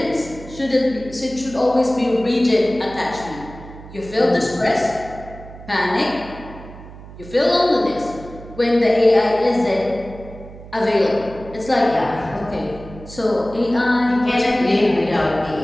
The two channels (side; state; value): right; noise; hum, 16 dB below the sound